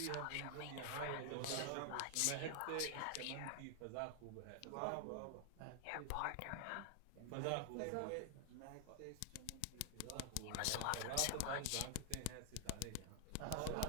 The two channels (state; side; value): different; both; correlation 0.00